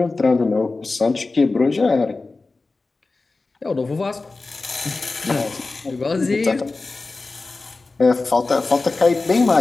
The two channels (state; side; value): quieter; right; 3.6 dB